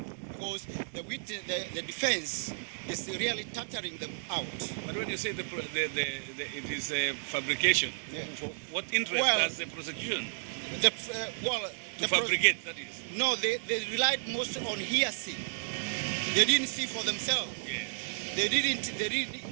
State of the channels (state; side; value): silent; left; digital silence